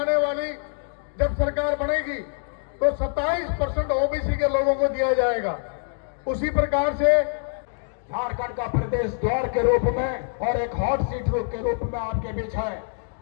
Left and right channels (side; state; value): right; silent; digital silence